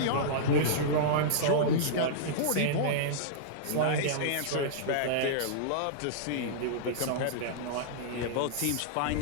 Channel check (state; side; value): different; both; correlation -0.03